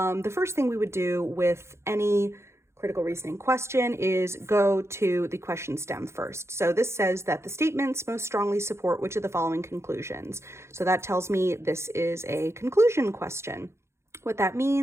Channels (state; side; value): late; left; 0.13 ms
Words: first thing we would do with any critical reasoning question is go to the question stem first. So this says that the statements most strongly support which of the following conclusions. So that tells me this is a conclusion question. What that